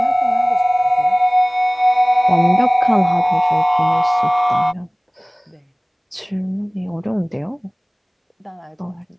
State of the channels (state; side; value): identical; both; correlation 1.00